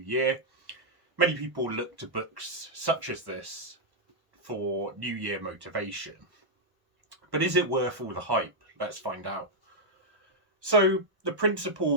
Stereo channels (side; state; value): left; late; 1.1 ms